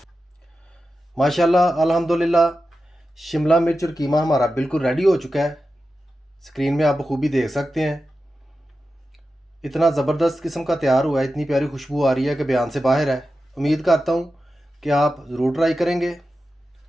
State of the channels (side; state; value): both; normal; correlation 0.92